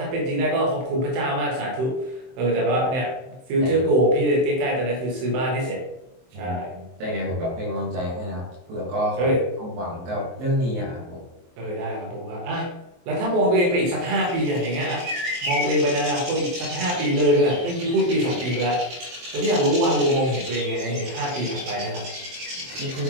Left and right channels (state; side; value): late; left; 23 ms